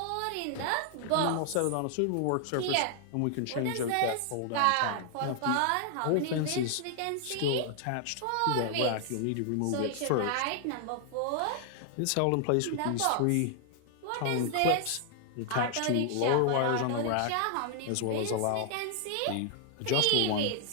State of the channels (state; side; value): different; both; correlation 0.00